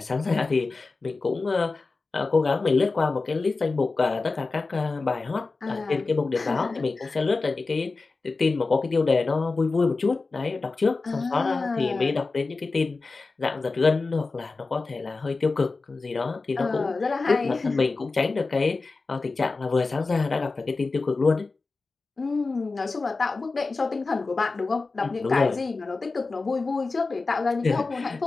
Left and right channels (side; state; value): right; quieter; 3.8 dB